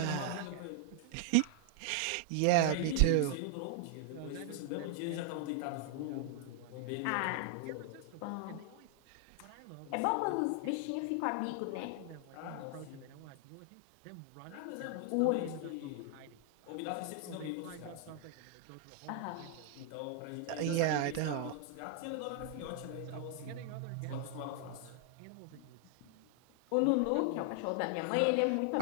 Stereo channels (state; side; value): different; both; correlation 0.00